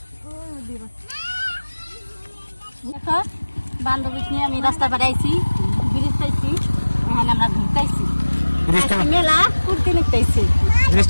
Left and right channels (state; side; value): inverted; both; correlation -1.00